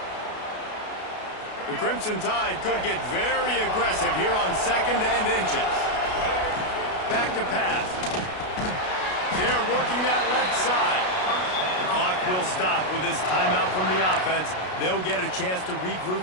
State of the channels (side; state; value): right; late; 33 ms